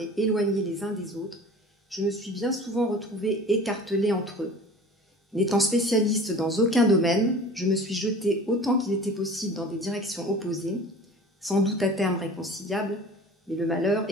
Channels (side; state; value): both; normal; correlation 0.41